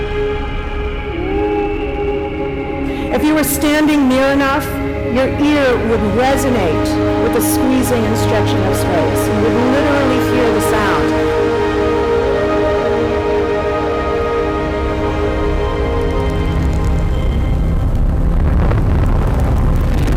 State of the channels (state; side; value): identical; both; correlation 1.00